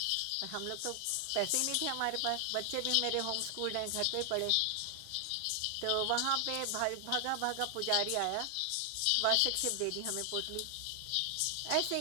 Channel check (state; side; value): different; both; correlation 0.00